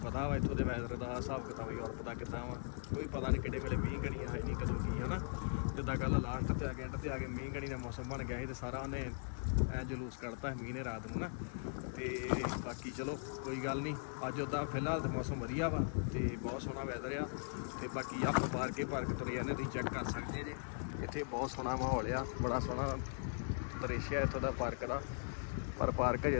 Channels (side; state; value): right; silent; digital silence